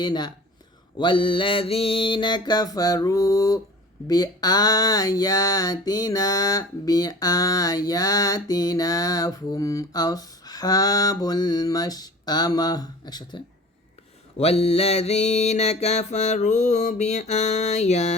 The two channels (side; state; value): both; normal; correlation 0.41